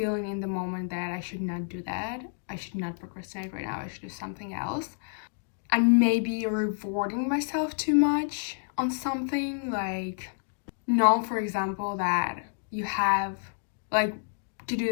in the moment that I should not do that. I should not procrastinate right now, I should do something else. And maybe rewarding myself too much on something, like, know, for example, that you have like to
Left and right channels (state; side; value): silent; right; digital silence